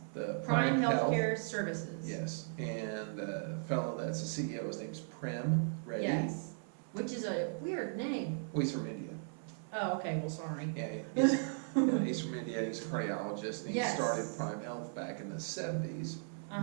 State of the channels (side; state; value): left; silent; 53 dB below the other